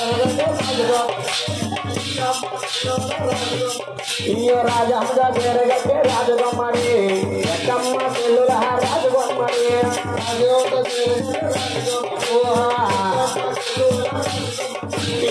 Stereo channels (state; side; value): identical; both; correlation 1.00